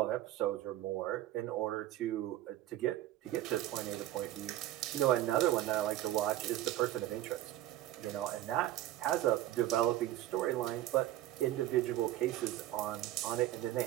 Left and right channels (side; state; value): left; quieter; 14.1 dB